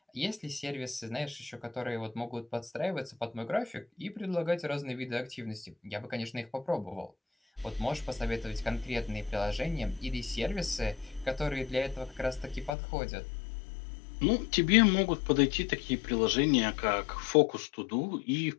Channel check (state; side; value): drops out; right; at 12.7 s